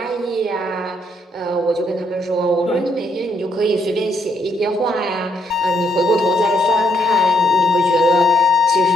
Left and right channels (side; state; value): both; normal; correlation 0.74